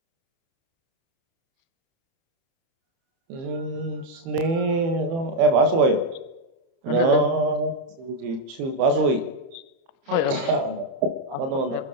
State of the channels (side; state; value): left; late; 30 ms